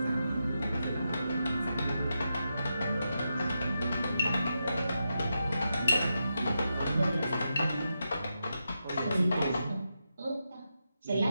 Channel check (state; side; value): inverted; both; correlation -0.86